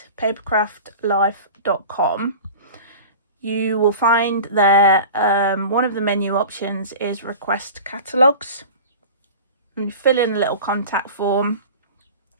papercraftlife.com, you will find there one of the menu options is request catalogues. And you fill in a little contact form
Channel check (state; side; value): inverted; both; correlation -0.36